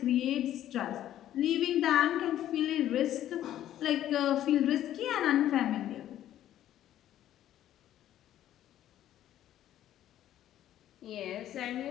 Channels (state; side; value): quieter; right; 12.1 dB